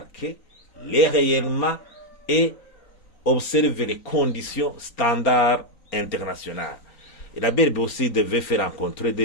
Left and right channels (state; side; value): late; right; 3.9 ms